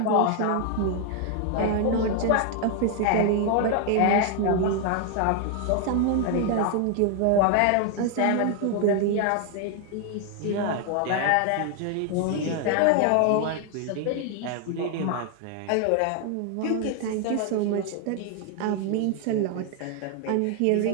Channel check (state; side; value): different; both; correlation 0.00